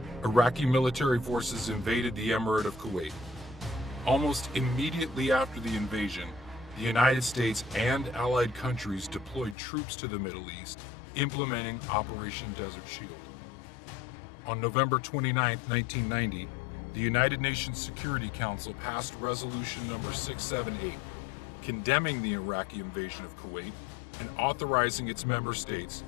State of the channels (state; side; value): drops out; right; at 9.6 s